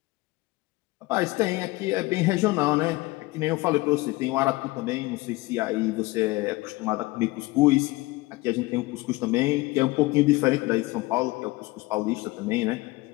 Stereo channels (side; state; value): right; quieter; 21.3 dB